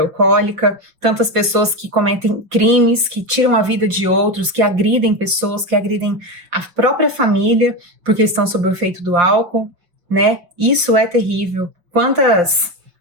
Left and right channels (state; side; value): late; left; 5.5 ms